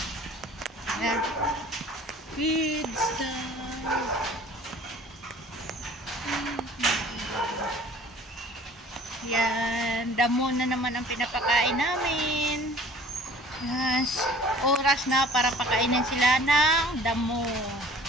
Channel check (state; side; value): normal; both; correlation 0.49